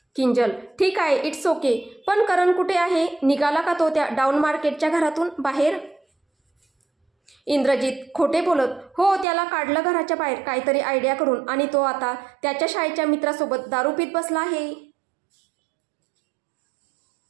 किंजल. ठीक आहे, इट्स ओके. पण करण कुठे आहे? निघाला का तो त्या डाऊन मार्केटच्या घरातून बाहेर? इंद्रजित. खोटे बोलत. हो, त्याला काढलं घराच्या बाहेर काहीतरी आयडिया करून आणि तो आता त्याच्या शाळेच्या मित्रासोबत दारू पीत बसला आहे.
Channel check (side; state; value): left; drops out; at 9.2 s